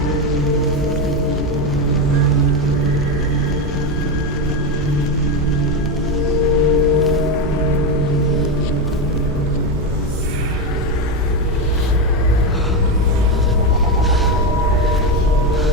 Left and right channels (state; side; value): normal; both; correlation 0.12